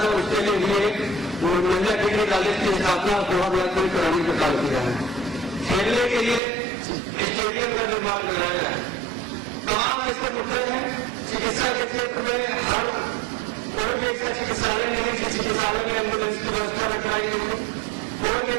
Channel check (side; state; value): left; drops out; at 6.4 s